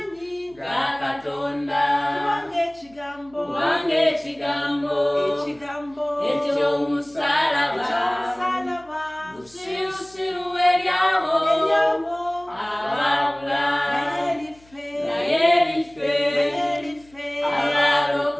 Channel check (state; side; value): noise; left; hum, 28 dB below the sound